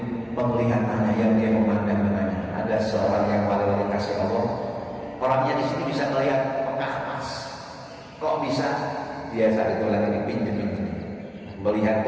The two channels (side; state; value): both; identical; correlation 1.00